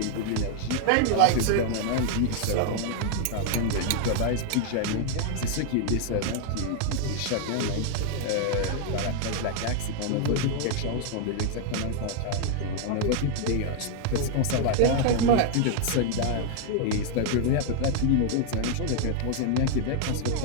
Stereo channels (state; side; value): different; both; correlation 0.00